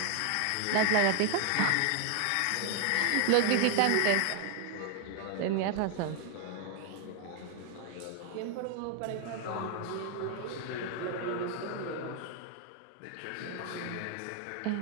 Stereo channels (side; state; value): both; different; correlation 0.00